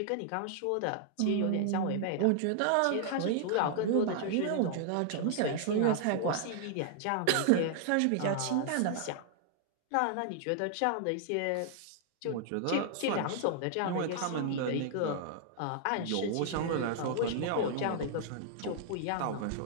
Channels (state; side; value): different; both; correlation -0.01